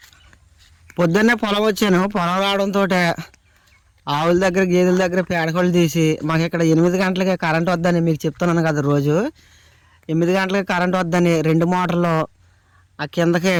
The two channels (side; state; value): both; identical; correlation 1.00